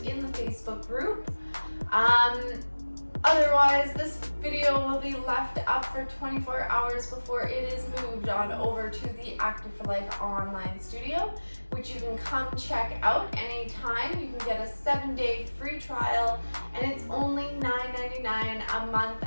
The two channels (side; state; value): both; inverted; correlation -1.00